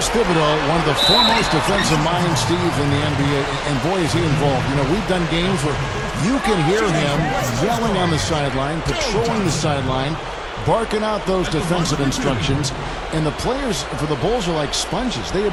Thibodeau, one of the foremost defensive minds, Steve, in the NBA. And boy, is he involved. You know, we've done games where you can hear him yelling on the sideline, patrolling the sideline, barking out those defensive instructions. And the players for the Bulls are like sponges. They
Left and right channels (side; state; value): both; identical; correlation 1.00